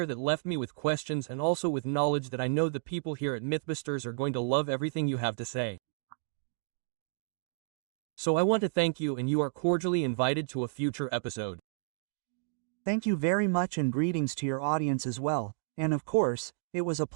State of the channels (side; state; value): left; silent; digital silence